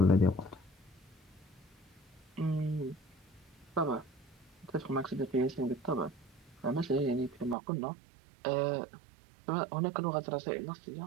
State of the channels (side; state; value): left; drops out; at 7.6 s